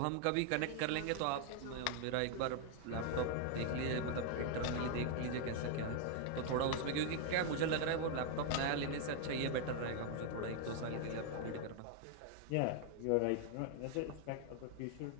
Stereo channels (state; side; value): different; both; correlation 0.00